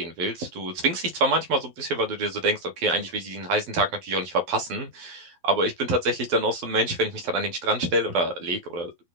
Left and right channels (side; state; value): left; late; 12 ms